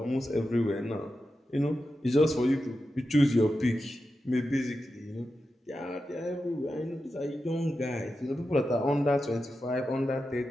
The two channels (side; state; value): both; normal; correlation 0.90